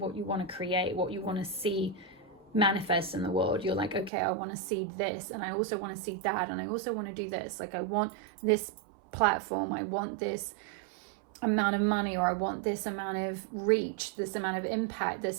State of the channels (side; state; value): left; drops out; at 4.1 s